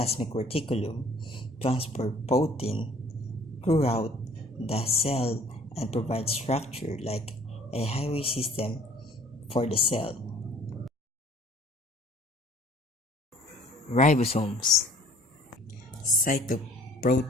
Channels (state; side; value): normal; both; correlation 0.54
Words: reticulum transport protein throughout the cell and provide structure like a highway system for the cell. Ribosomes.